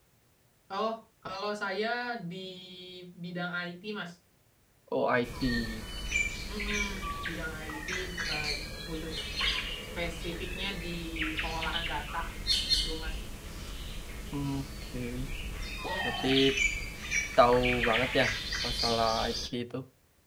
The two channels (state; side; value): identical; both; correlation 1.00